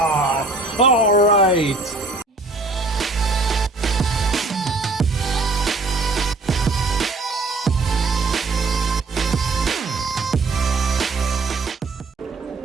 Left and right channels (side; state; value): left; quieter; 3.5 dB